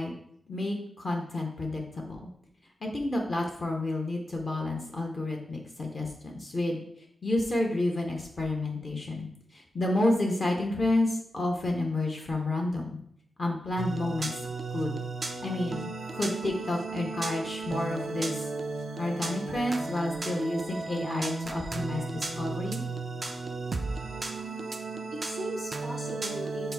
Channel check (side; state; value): both; normal; correlation 0.88